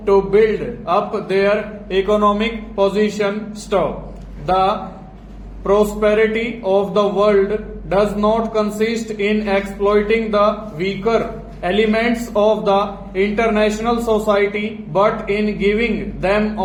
to build up their economic position. Stop. The prosperity of the world does not consist in exploiting the weaker elements of the international society, but in giving them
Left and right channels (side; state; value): both; identical; correlation 1.00